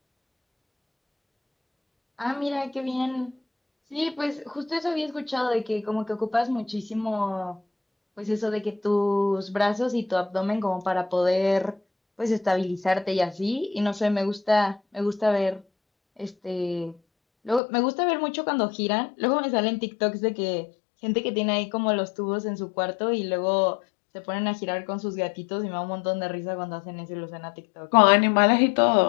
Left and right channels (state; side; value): drops out; right; at 17.6 s